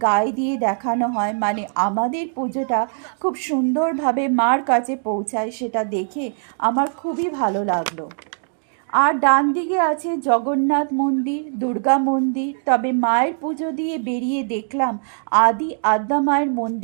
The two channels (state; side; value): silent; left; 64 dB below the other